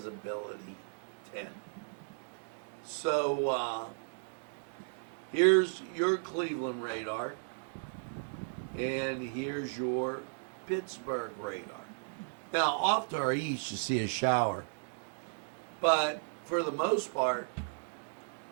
10. So here's your Cleveland radar, and here's your Pittsburgh radar. Now, off to our east, you see a shower, but for the most part,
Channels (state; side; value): silent; left; digital silence